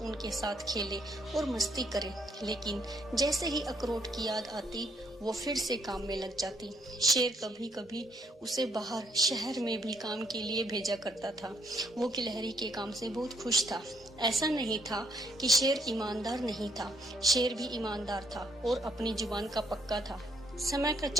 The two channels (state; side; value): normal; both; correlation 0.72